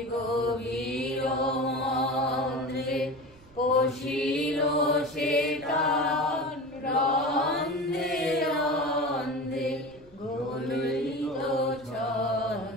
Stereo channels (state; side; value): noise; right; rumble, 26 dB below the sound